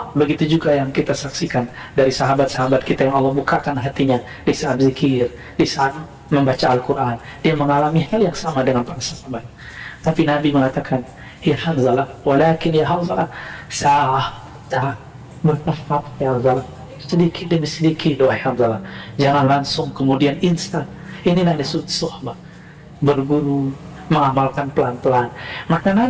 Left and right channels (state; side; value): identical; both; correlation 1.00